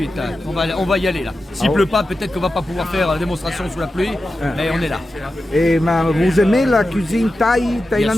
Là. On va y aller là. S'il pleut pas, peut-être qu'on va pas pouvoir faire la démonstration sous la pluie, mais on est là. Et vous aimez la cuisine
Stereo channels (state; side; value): normal; both; correlation 0.92